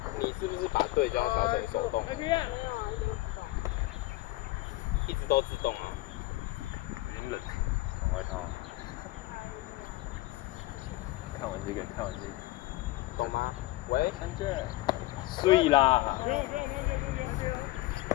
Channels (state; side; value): quieter; right; 18.5 dB